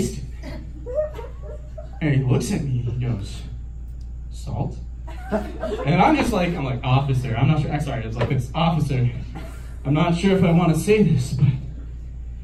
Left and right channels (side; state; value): both; identical; correlation 1.00